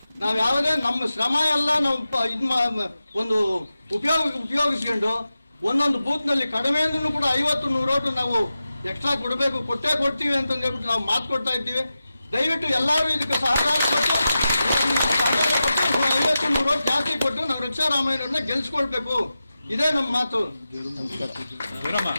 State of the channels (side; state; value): both; inverted; correlation -0.92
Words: ನಾವು ಯಾವುದೇ ನಮ್ಮ ಶ್ರಮ ಎಲ್ಲ ನಾವು ಒಂದು ಉಪಯೋಗಿಸ್ಕೊಂಡು ಒಂದೊಂದು ಬೂತ್ನಲ್ಲಿ ಕಡಿಮೆ ಅಂದ್ರೂ ಕೂಡ 50-100 ಓಟು ನಾವು ಎಕ್ಸ್ಟ್ರಾ ಕೊಟ್ಟೇ ಕೊಡ್ತೀವಿ ಅಂತ ಹೇಳ್ಬಿಟ್ಟು ನಾವು ಮಾತು ಕೊಡ್ತಾ ಇದ್ದೀವಿ. ದಯವಿಟ್ಟು ಎಲ್ಲರೂ ಇದಕ್ಕೆ ಸಹಕಾರ ಕೊಟ್ಟು 50-100 ಓಟ್ ಜಾಸ್ತಿ ಕೊಟ್ಟು ನಾವು ರಕ್ಷಾರಾಮಯ್ಯನವ್ರನ್ನ ಗೆಲ್ಸ್ಕೊಳ್ಬೇಕು. ಇದೇ ನಮ್ಮ ಮಾತು.